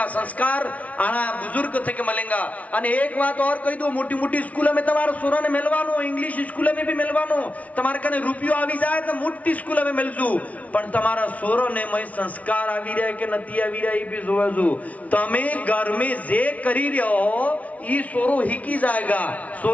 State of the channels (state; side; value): late; right; 0.068 ms